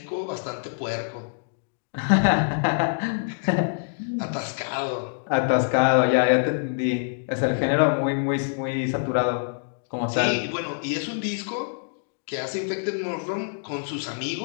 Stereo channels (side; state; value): right; silent; digital silence